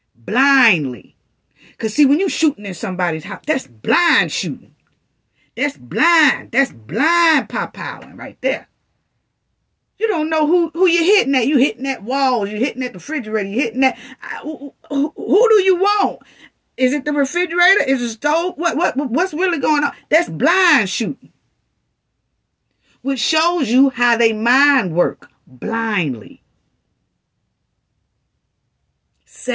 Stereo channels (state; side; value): identical; both; correlation 1.00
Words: blindly. Because see, when you shooting in somebody's house, that's blind shooting. That's blind. That's blind pow-powing right there. You don't know who you're hitting at. You hitting at walls. You're hitting at the refrigerator. You're hitting at... Who do you want? Is it the refrigerator? Is it the stove? What's really going on? That's blind shooting. Which shows you how they mind work. Blindly.